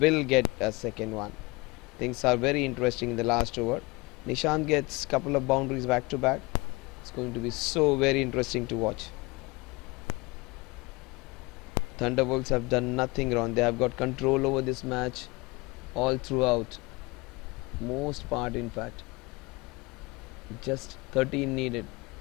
will get a second one. Things are very interesting in the last over. Nishant gets couple of boundaries back to back. It's going to be so very interesting to watch. Thunderwolves have done nothing wrong. They have got control over this match all throughout. Most part, in fact. Just 13 needed,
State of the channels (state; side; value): quieter; right; 24.4 dB